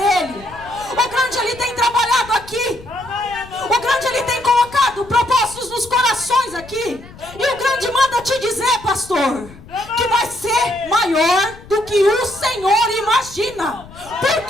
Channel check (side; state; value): left; noise; rumble, 20 dB below the sound